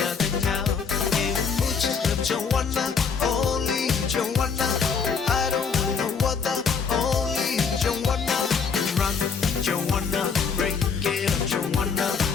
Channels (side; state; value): right; quieter; 5.9 dB